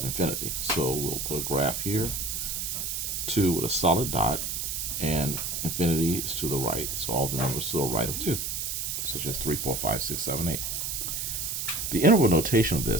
infinity. So we'll put a graph here, 2 with a solid dot, and infinity is to the right. So all the numbers to the right of 2, such as 3, 4, 5, 6, 7, 8. The interval notation of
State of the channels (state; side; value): noise; right; hiss, 2 dB below the sound